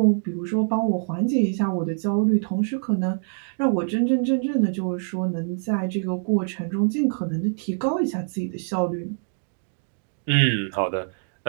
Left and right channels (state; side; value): silent; left; digital silence